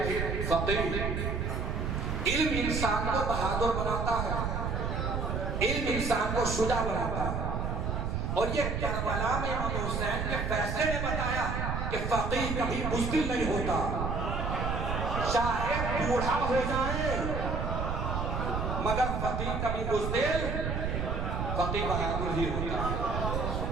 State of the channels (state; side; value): noise; right; rumble, 1 dB below the sound